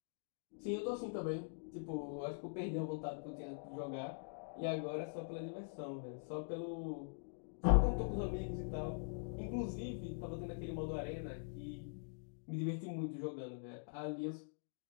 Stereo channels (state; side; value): silent; right; digital silence